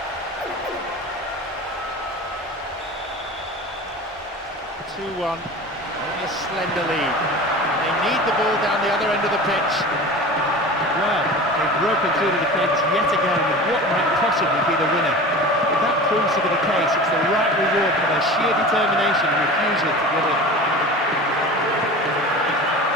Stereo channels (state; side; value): normal; both; correlation 0.35